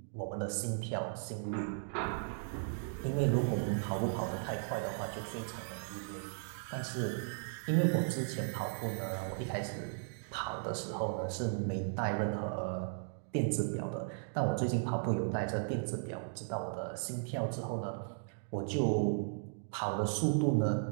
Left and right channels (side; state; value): left; silent; digital silence